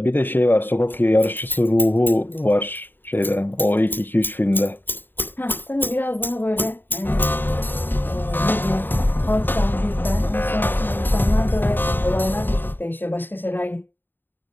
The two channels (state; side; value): late; right; 0.093 ms